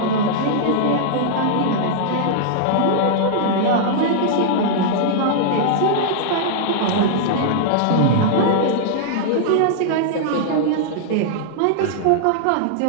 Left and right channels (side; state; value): both; different; correlation -0.01